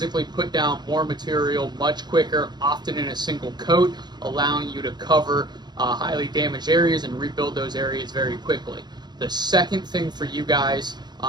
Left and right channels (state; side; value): late; left; 0.21 ms